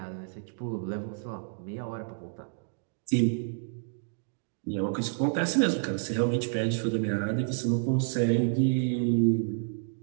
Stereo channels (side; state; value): left; silent; digital silence